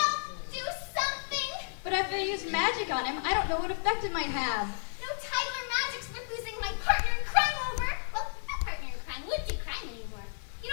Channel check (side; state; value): right; silent; digital silence